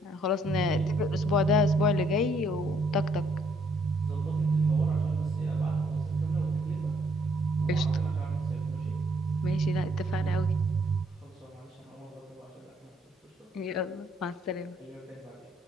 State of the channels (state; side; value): normal; both; correlation 0.68